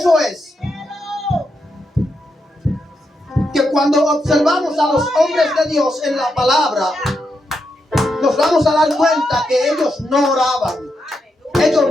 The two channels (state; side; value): normal; both; correlation 0.83